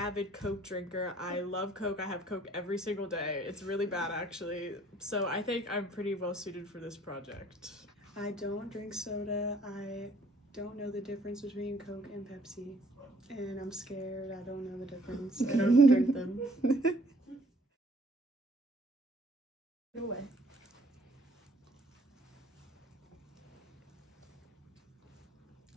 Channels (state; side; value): normal; both; correlation 0.60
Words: Coke drinker. I love Coke. I have Coke every single day. It's really bad, actually. So I think I'm pretty well suited for this project. I don't drink soda. I don't know the difference between Coke and Pepsi. And I'm scared. I don't know the difference. I don't drink them. Go away.